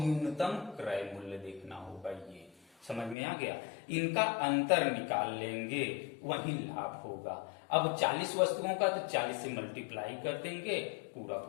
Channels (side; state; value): right; drops out; at 3.2 s